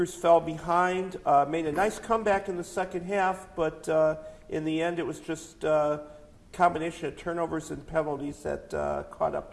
fell behind, made a nice comeback in the second half, but in the end it was just combination of turnovers and penalties that caught up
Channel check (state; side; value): identical; both; correlation 1.00